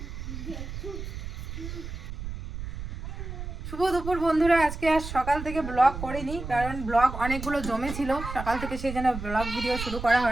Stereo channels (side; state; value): right; noise; rumble, 8 dB below the sound